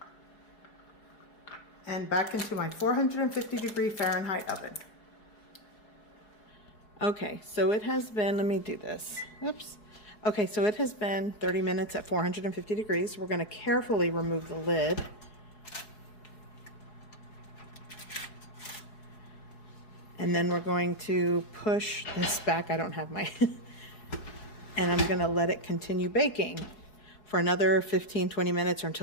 and back into my 450 degree Fahrenheit oven. Okay, so it has been, let me do this. Oops. Okay, so it has been 30 minutes at 450 degrees. We're going to carefully remove the lid. And then we're going to push this back. I don't have my, and I'm going to let it continue baking for another 15-20 minutes or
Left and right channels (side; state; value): right; late; 4.7 ms